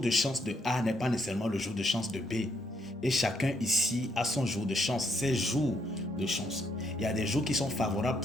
chance de A n'est pas nécessairement le jour de chance de B. Et chacun ici a son jour de chance, ses jours de chance. Il y a des jours qui sont favorables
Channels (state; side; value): normal; both; correlation 0.74